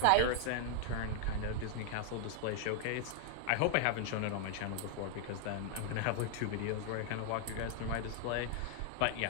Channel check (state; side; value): different; both; correlation 0.00